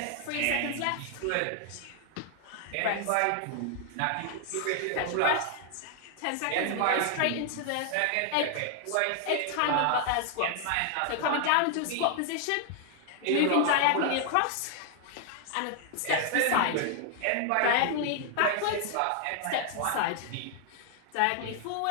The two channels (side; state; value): both; different; correlation 0.00